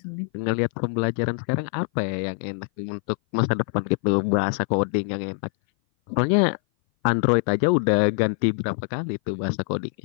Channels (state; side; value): silent; right; 58 dB below the other